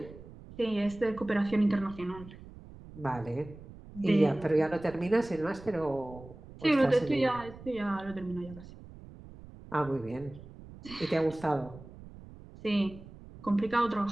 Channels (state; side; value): noise; right; rumble, 17 dB below the sound